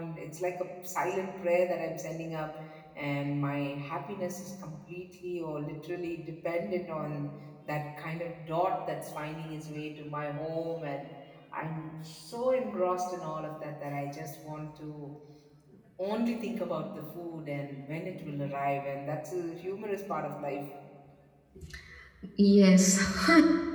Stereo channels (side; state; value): both; identical; correlation 1.00